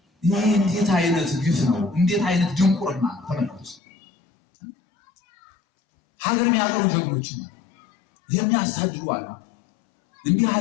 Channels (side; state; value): right; drops out; at 3.8 s